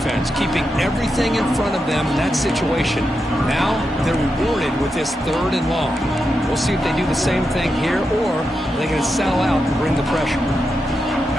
keeping everything in front of them in that situation. Now they're rewarded with this 3rd and long. We'll see if they do the same thing here, or they're going to sell out and bring the pressure.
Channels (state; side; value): normal; both; correlation 0.87